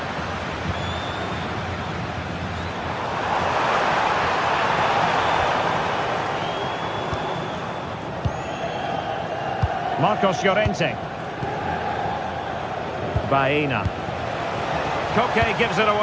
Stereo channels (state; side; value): identical; both; correlation 1.00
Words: Marcos Llorente. Baena. Koke gives it